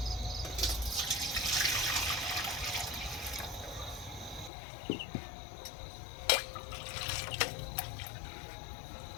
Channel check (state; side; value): drops out; right; at 4.5 s